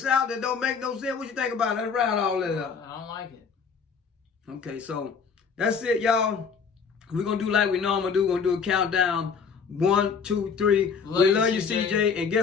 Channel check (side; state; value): right; quieter; 5.9 dB